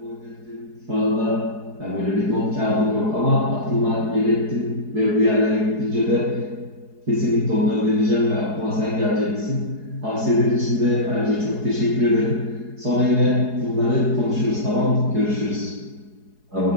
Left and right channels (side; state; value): left; late; 4.7 ms